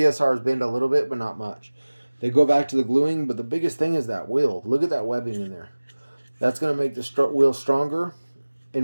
bend a little bit, but not much. They go back to the gluing, but the biggest thing is that wheel. Look at that webbing in there. That's going to make the wheel stronger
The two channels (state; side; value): inverted; both; correlation -1.00